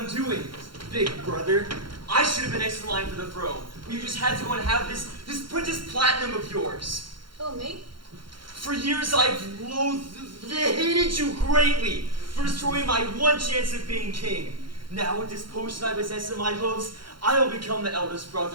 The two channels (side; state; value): left; late; 0.73 ms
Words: doing, big brother. I should have been next in line for the throne. You just had to go and have this Princess Platinum of yours. Oh, me? For years I've hated you greatly for destroying my one chance of being king. Now with this potion I possess in my hooves, I will become the eldest